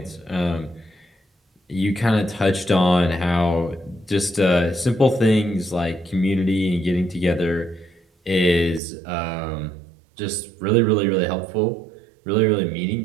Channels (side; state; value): left; drops out; at 8.8 s